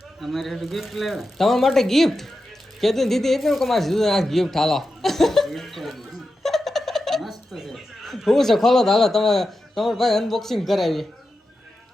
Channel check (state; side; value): normal; both; correlation 0.90